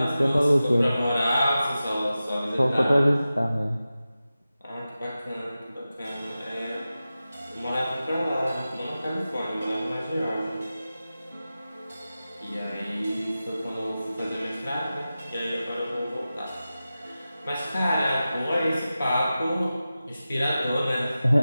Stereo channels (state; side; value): inverted; both; correlation -0.94